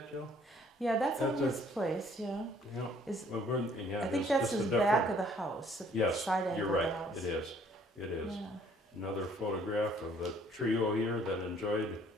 Jill? Yeah, that's on his place, yeah. Yeah. I think that's his back of the house. Yes, side angle you're right. Of the house. It is. It is. Yeah. Another photograph of the trio here that enjoyed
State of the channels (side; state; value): both; normal; correlation 0.60